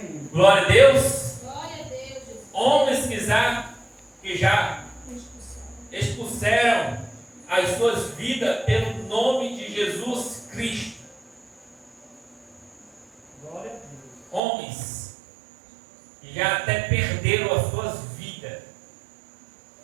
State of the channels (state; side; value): drops out; left; at 14.4 s